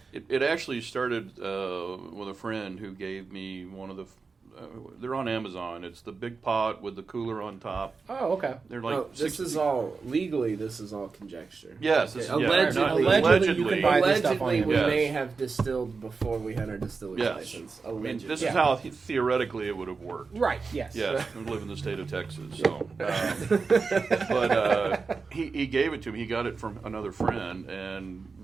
It actually started with a friend who gave me one of the. They're on Amazon. It's the big pot with the cooler on top. Oh, okay. They're like No, this is all legally. This is all conjecture. Yes, this is- Allegedly, Allegedly, you can buy this stuff on allegedly, we Amazon. may Yes. have distilled before we had our distillery Yes. license. I mean, Allegedly. this is how theoretically it would have worked. Right. Yes. Yes, we live in the state of Texas, so. But he gave it to me. He got it from another friend, and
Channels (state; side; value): quieter; left; 4.6 dB